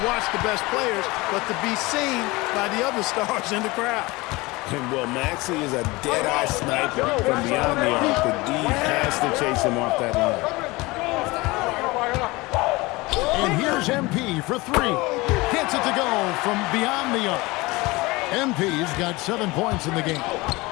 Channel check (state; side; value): quieter; right; 22.5 dB